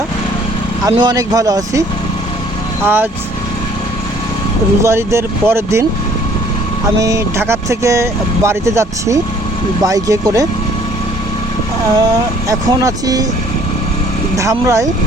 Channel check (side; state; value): both; normal; correlation 0.58